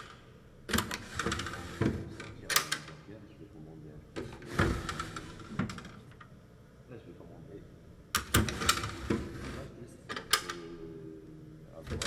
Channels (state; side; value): identical; both; correlation 1.00